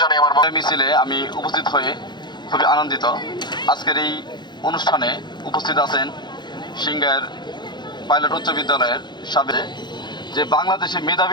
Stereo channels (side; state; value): right; late; 0.21 ms